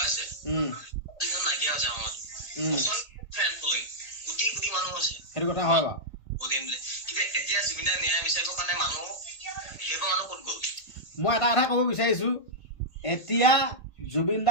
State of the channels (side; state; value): right; late; 1.8 ms